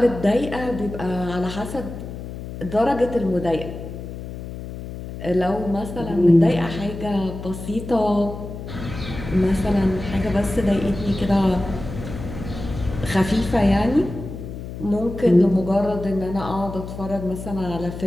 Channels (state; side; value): noise; left; hum, 10 dB below the sound